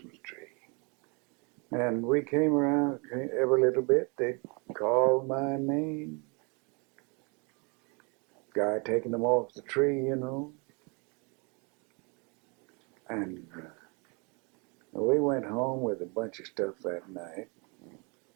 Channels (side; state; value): left; quieter; 32.5 dB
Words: tree. And we came around every little bit. They'd call my name. guy taking them off the tree, you know. And we went home with a bunch of stuff that night.